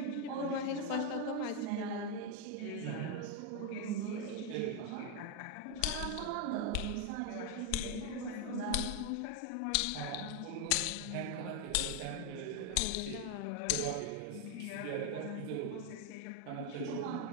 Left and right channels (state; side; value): different; both; correlation 0.01